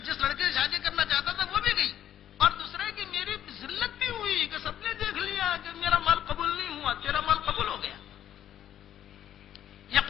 سے شادی کرنا چاہتا تھا وہ بھی گئی، اور دوسرے کی میری ذلت بھی ہوئی کہ سب نے دیکھ لیا کہ میرا مال قبول نہیں ہوا، تیرا مال قبول ہو گیا، یہ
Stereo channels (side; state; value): right; quieter; 10.9 dB